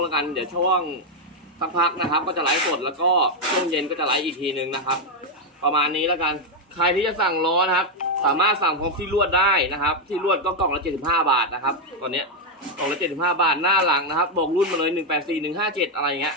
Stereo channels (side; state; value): both; normal; correlation 0.03